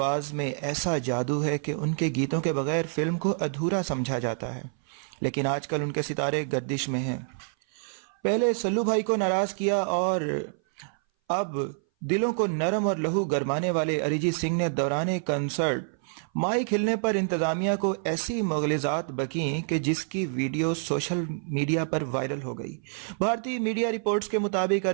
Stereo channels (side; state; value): left; silent; 58 dB below the other